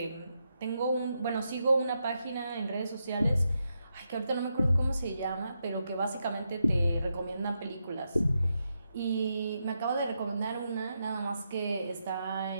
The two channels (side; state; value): both; inverted; correlation -0.84